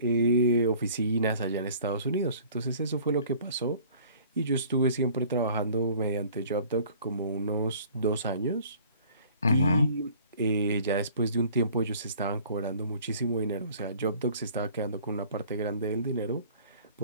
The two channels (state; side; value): inverted; both; correlation -0.52